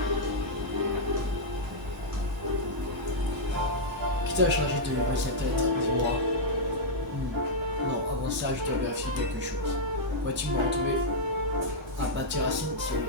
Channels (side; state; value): both; normal; correlation -0.06